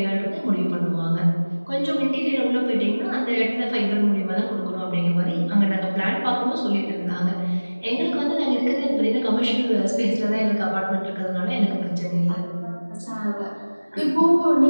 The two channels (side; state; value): both; inverted; correlation -1.00